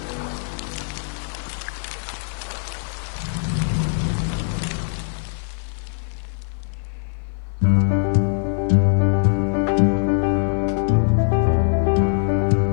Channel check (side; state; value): right; silent; 64 dB below the other